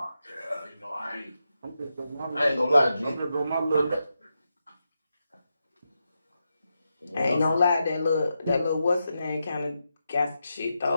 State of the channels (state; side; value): inverted; both; correlation -0.86